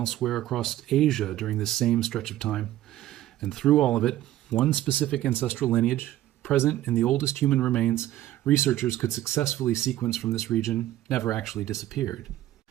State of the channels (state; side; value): quieter; left; 14.1 dB